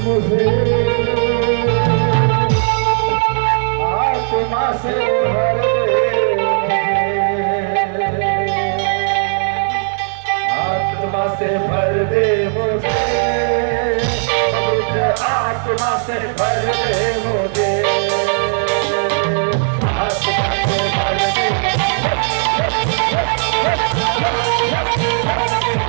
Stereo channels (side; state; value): left; silent; digital silence